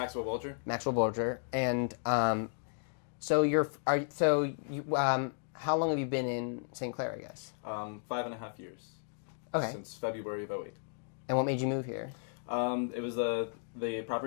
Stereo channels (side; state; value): right; silent; digital silence